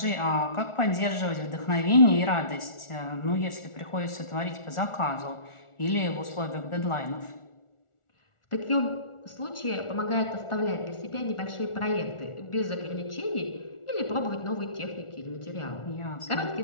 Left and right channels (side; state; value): right; late; 1.4 ms